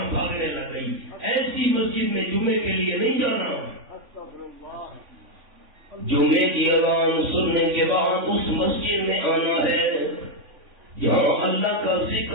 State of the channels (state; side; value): late; left; 3.5 ms